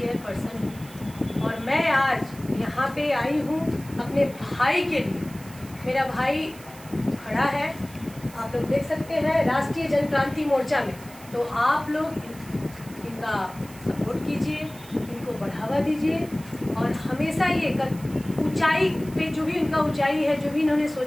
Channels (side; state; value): right; noise; hiss, 20 dB below the sound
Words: हूँ और मैं आज यहाँ पे आई हूँ अपने भाई के लिए। मेरा भाई खड़ा है, आप लोग देख सकते हैं राष्ट्रीय जनक्रांति मोर्चा में, तो आप लोग इनका सपोर्ट कीजिए, इनको बढ़ावा दीजिए और हमेशा ये ऊंचाई पे जो भी उनका ऊंचाई है, जो भी इन्होंने